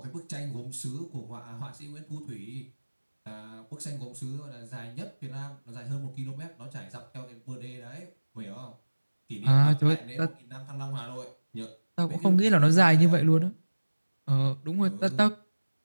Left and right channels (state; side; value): inverted; both; correlation -1.00